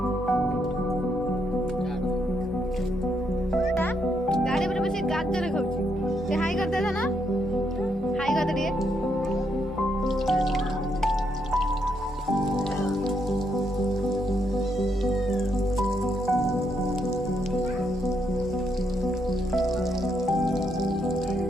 गाड़ी पर बस गाजर खाऊची से हाई कर दे ना हाई कर दे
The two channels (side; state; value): both; normal; correlation 0.77